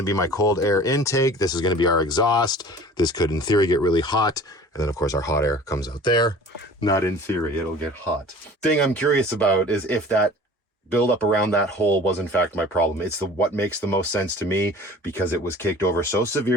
to be my cold air intake. This is going to be our exhaust. This could in theory get really hot. And then of course our hot air comes out there. Not in theory, it'll get hot. Thing I'm curious about is if that build up around that hole was in fact my problem. It's what makes the most sense to me, because it was caked over so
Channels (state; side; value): normal; both; correlation 0.44